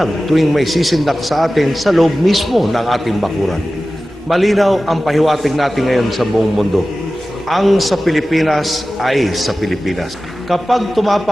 tuwing may sisindak sa atin sa loob mismo ng ating bakuran. Malinaw ang pahiwatig natin ngayon sa buong mundo. Ang sa Pilipinas ay sa Pilipinas. Kapag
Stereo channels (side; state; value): both; normal; correlation 0.95